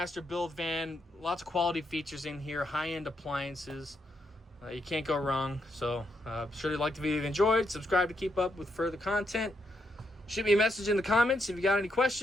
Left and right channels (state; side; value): normal; both; correlation 0.79